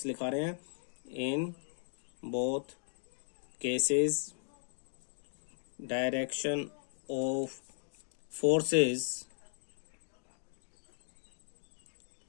लिखा रहे हैं, in both cases direction of forces,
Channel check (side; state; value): right; silent; digital silence